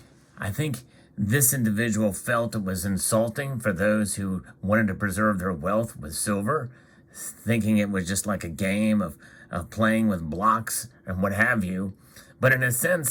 think this individual felt it was insulting for those who wanted to preserve their wealth with silver, thinking it was just like a game of playing with blocks and what have you. But in a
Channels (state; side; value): identical; both; correlation 1.00